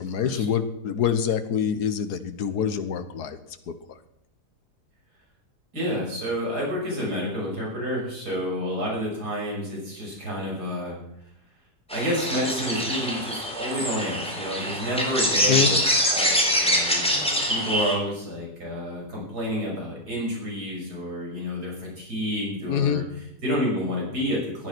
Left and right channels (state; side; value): normal; both; correlation -0.01